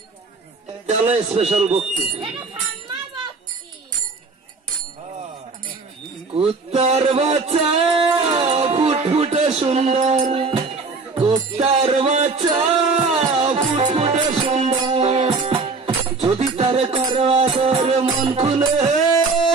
চলো স্পেশাল ভক্তি। কুত্তার বাচ্চা ফুটফুটে সুন্দর, কুত্তার বাচ্চা ফুটফুটে সুন্দর, যদি তার করো আদর মন খুলে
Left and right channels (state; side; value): quieter; left; 4.1 dB